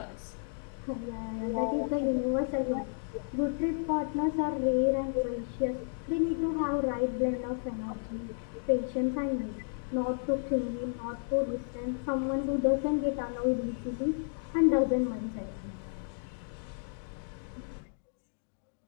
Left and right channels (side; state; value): right; silent; digital silence